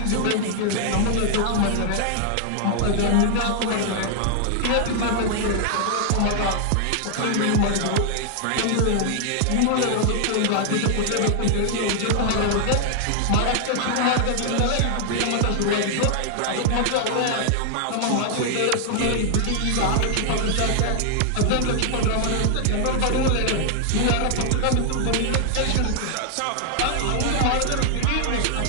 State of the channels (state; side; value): different; both; correlation 0.00